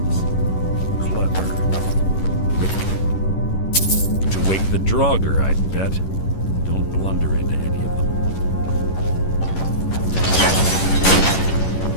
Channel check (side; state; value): right; late; 11 ms